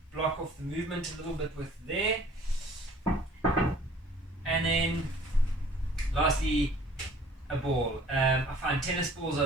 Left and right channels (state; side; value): normal; both; correlation 0.52